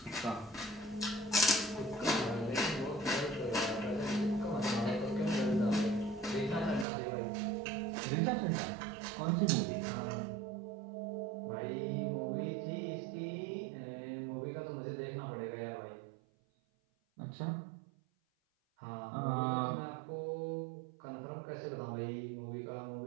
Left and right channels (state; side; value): drops out; left; at 6.9 s